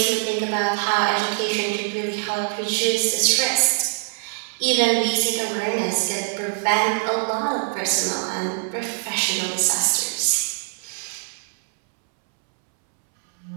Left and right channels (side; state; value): left; silent; 63 dB below the other